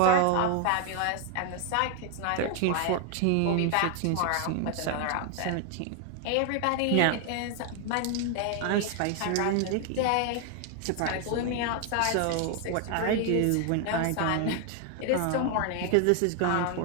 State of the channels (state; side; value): different; both; correlation 0.01